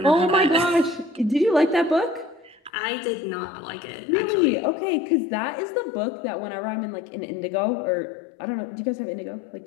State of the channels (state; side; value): drops out; right; at 2.7 s